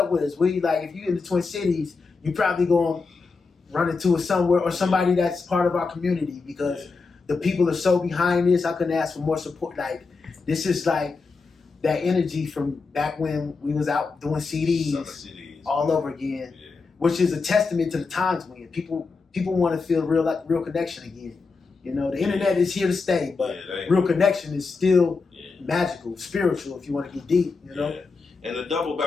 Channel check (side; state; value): right; quieter; 4.4 dB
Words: with us. If you're in the Twin Cities, you probably going to run into us somewhere or somebody that's part of our community because the people are so behind this. I couldn't ask for more support. Like, this is like that energy from back when we was out doing CDs all over again, which is a testament to the times when people want to feel real connection again. You know, the internet is here to stay, but real connection is still magical, spiritual, if you want to get deep, you know? And to double